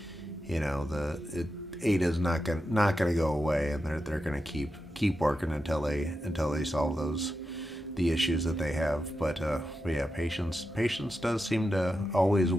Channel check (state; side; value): normal; both; correlation 0.89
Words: Ada's not gonna go away, and they're gonna keep working until they solve the issues that they have. But yeah, patience does seem to always